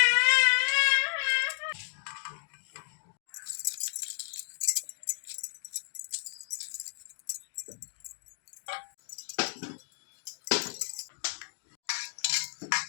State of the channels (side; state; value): right; silent; digital silence